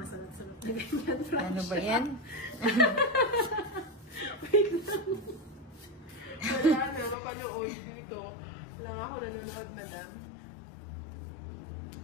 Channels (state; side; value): drops out; right; at 7.2 s